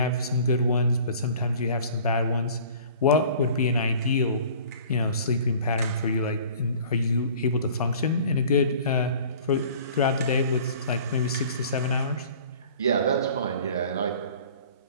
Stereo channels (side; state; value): both; inverted; correlation -0.47